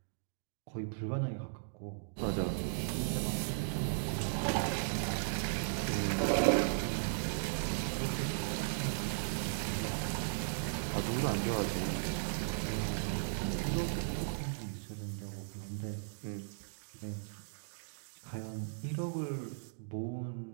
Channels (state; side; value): silent; left; digital silence